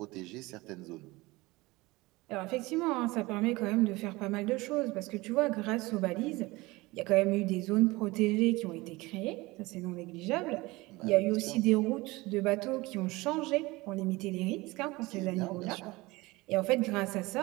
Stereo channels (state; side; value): quieter; left; 21.6 dB